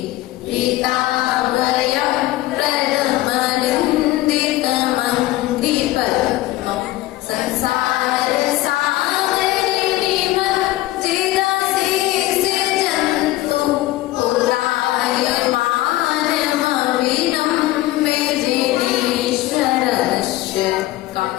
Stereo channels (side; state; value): right; quieter; 16.7 dB